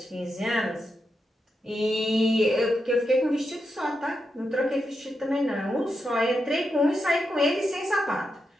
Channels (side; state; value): both; normal; correlation 0.86